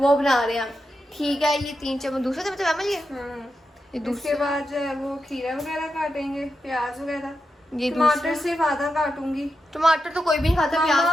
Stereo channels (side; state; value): both; normal; correlation 0.88